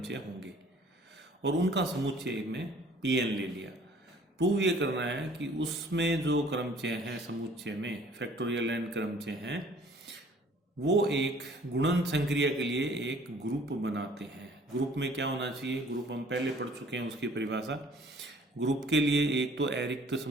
होंगे और उनका समुच्चय में Pn ले लिया। प्रूव ये करना है कि उसमें जो क्रमचय हैं समुच्चय में फैक्टोरियल n क्रमचय हैं वो एक गुणन संक्रिया के लिए एक ग्रुप बनाते हैं। ग्रुप में क्या होना चाहिए? ग्रुप हम पहले पढ़ चुके हैं, उसकी परिभाषा। ग्रुप के लिए एक तो अरिक्त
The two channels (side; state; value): both; normal; correlation 0.54